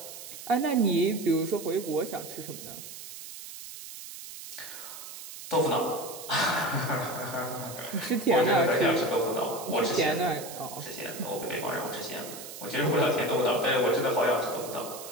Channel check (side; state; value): right; noise; hiss, 12 dB below the sound